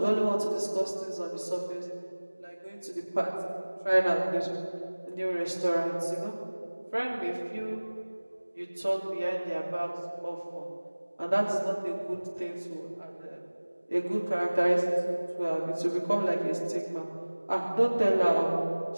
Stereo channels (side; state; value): both; inverted; correlation -1.00